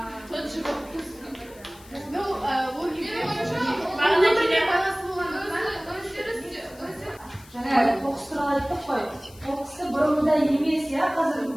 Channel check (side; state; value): left; noise; hiss, 23 dB below the sound